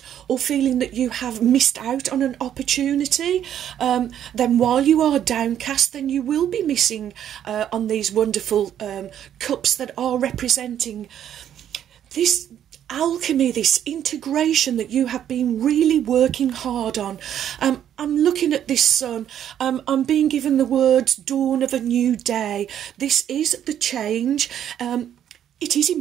or feeling that you have missed out on an opportunity, then while you are downcast, then you will be missing on these wonderful cups that are representing this alchemy, this integration that you have been really working hard on. I'm looking at this sun. I'm being given the words dawn of a new day. This is the change. It is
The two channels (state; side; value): quieter; left; 10.2 dB